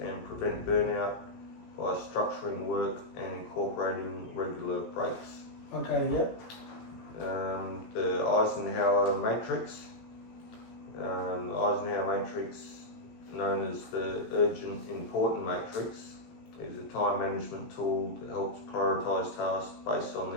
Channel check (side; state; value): right; late; 17 ms